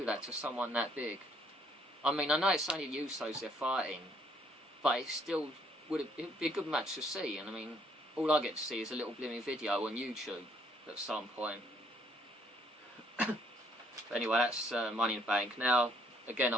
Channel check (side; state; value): both; normal; correlation 0.65